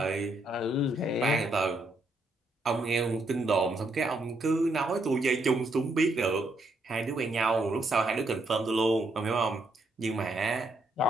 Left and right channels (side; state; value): both; normal; correlation 0.75